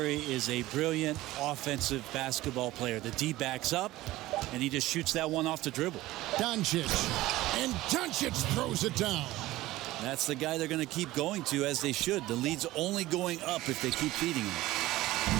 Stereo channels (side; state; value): left; quieter; 17.2 dB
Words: is a brilliant offensive basketball player. The D backs up, and he just shoots that one off the dribble. Doncic. And Doncic throws it down. That's the guy they're going to keep going to, as they should. The lead's only going up if they keep feeding